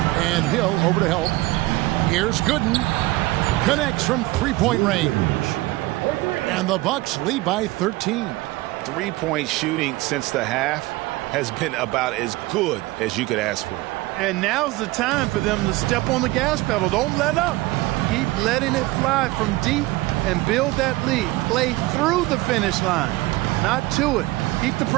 And Hill over to help. Here's Gooden. Connects from three-point range. And the Bucks lead by 13. Three-point shooting since the half has been about as good as you could ask for. And now's the time for them to step on the gas pedal. Don't let up. Keep letting it fly from deep and build that lead. Play through the finish line, not to it. Keep the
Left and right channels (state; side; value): quieter; left; 19.8 dB